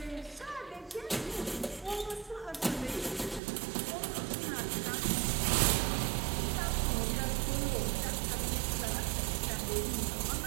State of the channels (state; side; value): drops out; left; at 3.4 s